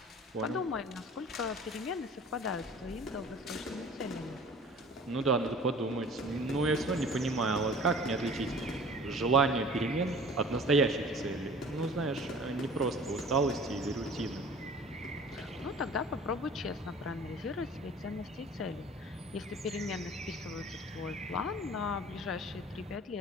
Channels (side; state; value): both; normal; correlation 0.46